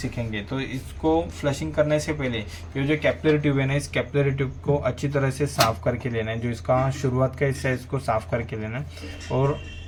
तो इसको फ्लशिंग करने से पहले ये जो कैपिलरी ट्यूब है ना, इस कैपिलरी ट्यूब को अच्छी तरह से साफ करके लेना है। जो इसका शुरुआत का हिस्सा है इसको साफ करके लेना है। और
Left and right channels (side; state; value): both; identical; correlation 1.00